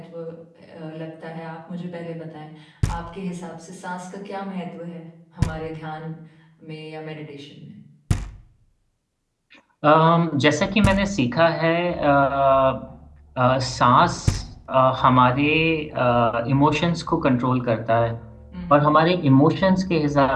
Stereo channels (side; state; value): both; identical; correlation 1.00